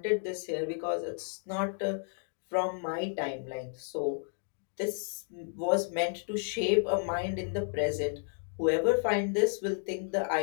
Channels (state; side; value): silent; right; 56 dB below the other